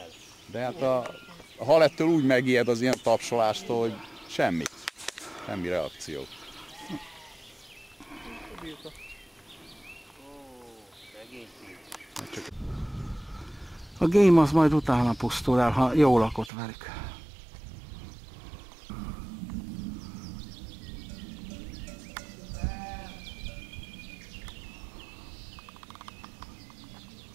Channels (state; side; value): drops out; left; at 16.5 s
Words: De hát a hal ettől úgy megijed az ilyen tapsolástól, hogy semmi. Semmi reakció. A game az majd utána pusztul el, ha jól lakott velük.